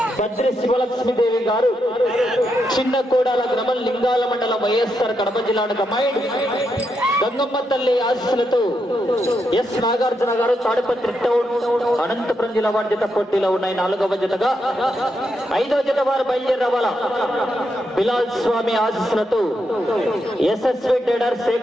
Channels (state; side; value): normal; both; correlation 0.82